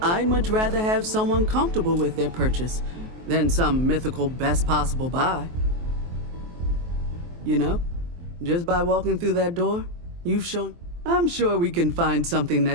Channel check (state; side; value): late; left; 23 ms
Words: I'd much rather have someone comfortable with their purchase than some mythical best possible buy. You know, just by walking through that door, you've shown... I'm sure we can find something